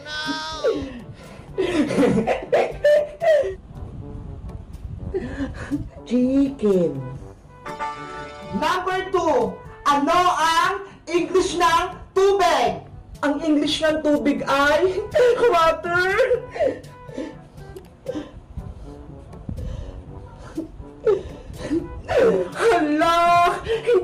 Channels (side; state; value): both; identical; correlation 1.00